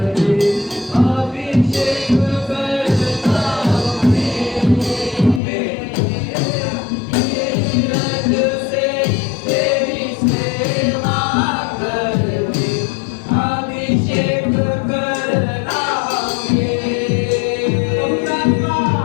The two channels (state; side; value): drops out; right; at 5.4 s